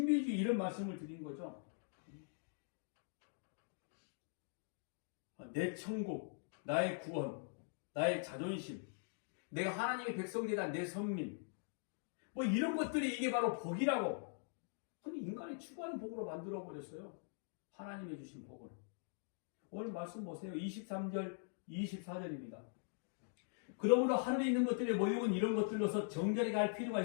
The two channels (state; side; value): silent; right; digital silence